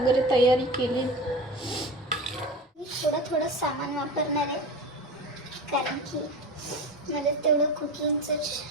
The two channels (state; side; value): normal; both; correlation 0.30